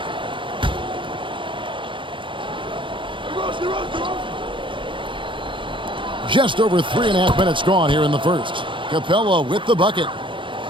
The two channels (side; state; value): left; late; 0.24 ms